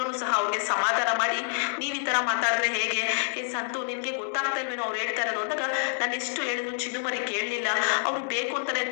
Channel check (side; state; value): right; silent; digital silence